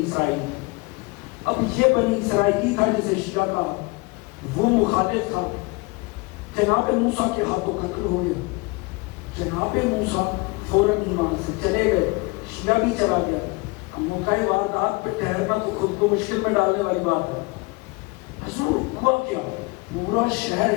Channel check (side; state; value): right; quieter; 26.4 dB